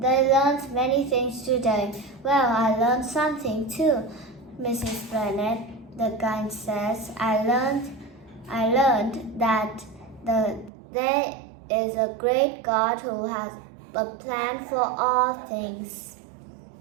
learned many things today. Well, I learned something too, Mrs. Bennet. The guide says. I learned that there is a great God who has a plan for all things.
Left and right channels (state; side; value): drops out; left; at 10.7 s